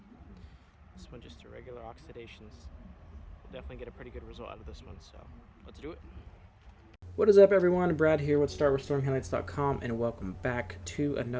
this one just a regular oxidations. We'll definitely get a pretty good result out of this one, so let's do it. What is up everyone, Brad here with StartRestoringHeadlights.com, and welcome back to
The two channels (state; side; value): identical; both; correlation 1.00